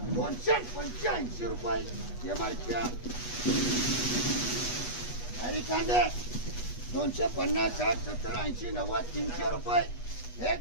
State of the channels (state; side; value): late; right; 8.2 ms